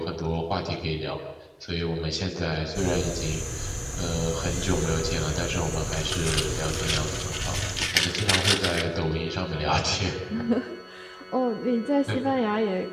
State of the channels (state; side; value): identical; both; correlation 1.00